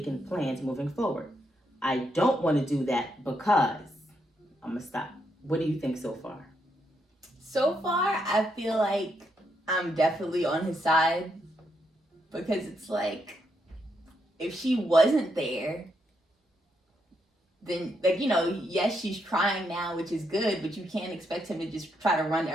plans moving forward. I don't want to do that because I'm going to stop. What do you think so far? So far, I feel like I'm definitely on his side, because it's like, if she wasn't there, then, like, yes, she's trying now, which is good, but you can't expect him to just try to run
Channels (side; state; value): both; normal; correlation 0.79